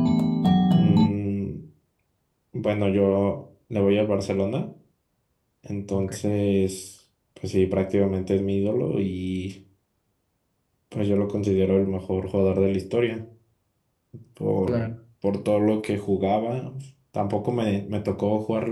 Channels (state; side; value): identical; both; correlation 1.00